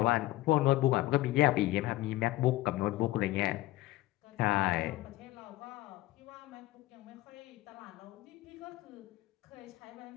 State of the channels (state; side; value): quieter; right; 17.3 dB